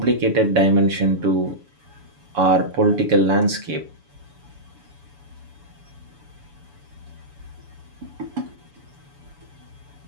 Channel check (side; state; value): left; late; 7.0 ms